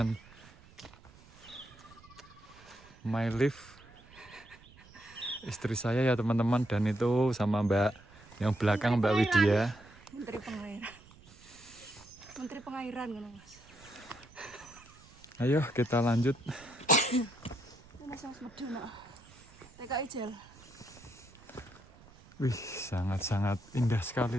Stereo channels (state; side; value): noise; right; rumble, 23 dB below the sound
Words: my life, istri saya ya teman-teman, dan itu sama Mbak yang belakang Mbak Widya. Menteri Pengairan kan Mas. Ayo kita lanjut. TKI Jel. Wih, sangat-sangat indah